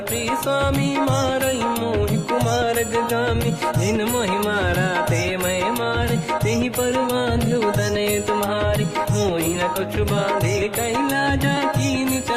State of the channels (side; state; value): both; identical; correlation 1.00